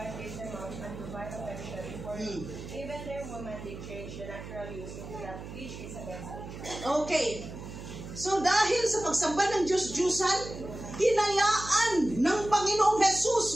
gave them up unto vile affection, for even their women they change the natural use into that which is against nature. Okay. So dahil sa pagsamba ng Diyos-Diyosan, hinayaan ng Panginoong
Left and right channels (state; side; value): noise; right; hum, 11 dB below the sound